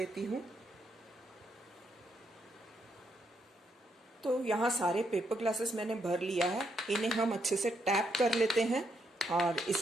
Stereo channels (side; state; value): both; normal; correlation 0.77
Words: हूँ। तो यहाँ सारे पेपर ग्लासेस मैंने भर लिया है। इन्हें हम अच्छे से टैप कर लेते हैं और